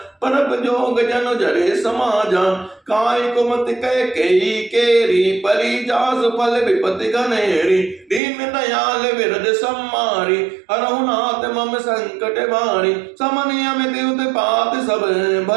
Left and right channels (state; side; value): drops out; left; at 8.2 s